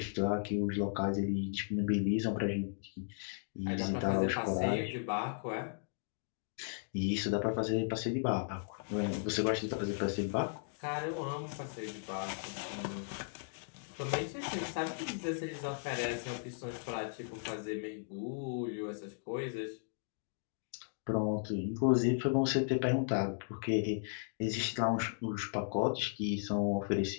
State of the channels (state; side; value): silent; right; digital silence